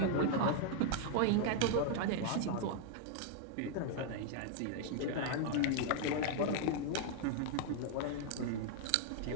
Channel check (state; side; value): different; both; correlation 0.00